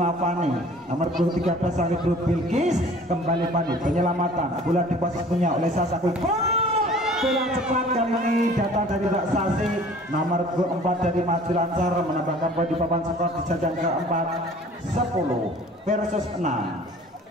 Fani nomor 13 sang Ibu Bilkis, kembali Fani penyelamatan bola di posisi punya oleh Sasa Quick. Bola cepat kali ini datang dari Mbak Sasi nomor 4 dari Maju Lancar, menambahkan poin di papan skor di jajang keempat 10 versus 6.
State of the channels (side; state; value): both; normal; correlation 0.49